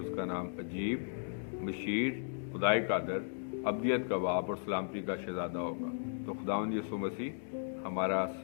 کا نام عجیب، مشیر، خدائے قادر، ابدیت کا باپ اور سلامتی کا شہزادہ ہوگا. تو خداوند یسوع مسیح ہمارا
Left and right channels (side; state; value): right; silent; digital silence